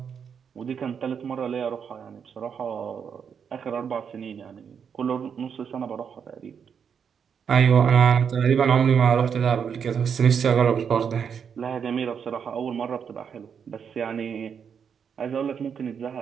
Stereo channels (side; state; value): left; quieter; 7.1 dB